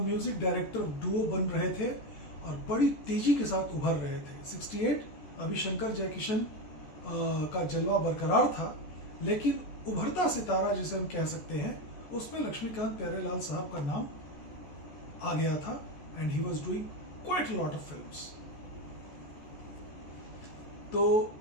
डायरेक्टर डुओ बन रहे थे और बड़ी तेजी के साथ उभर रहे थे। 68 अभी शंकर जयकिशन का जलवा बरकरार था, लेकिन उभरता सितारा जिसे हम कह सकते हैं उसमें लक्ष्मीकांत प्यारेलाल साहब का नाम आ गया था, and he was doing quite a lot of films. तो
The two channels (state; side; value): late; right; 14 ms